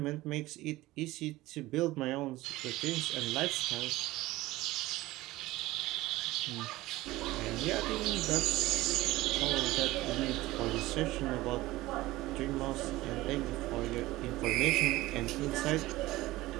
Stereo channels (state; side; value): quieter; left; 18.1 dB